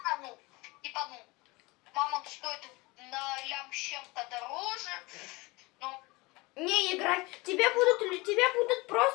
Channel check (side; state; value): right; quieter; 23.6 dB